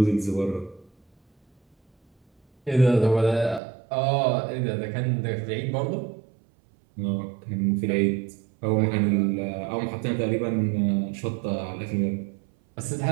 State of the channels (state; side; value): drops out; left; at 3.6 s